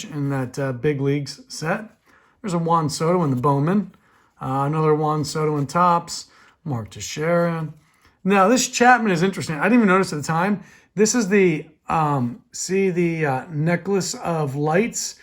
in that big leagues set. There's a Juan Soto in the Bowman. Another Juan Soto in Topps. Mark Teixeira. Now this Chapman is interesting. I didn't even notice at the time. This is the, necklace of lights.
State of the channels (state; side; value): identical; both; correlation 1.00